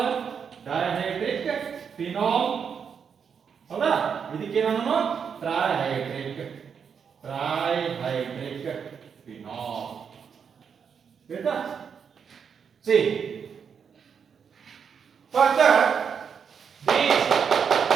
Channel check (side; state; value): left; quieter; 6.8 dB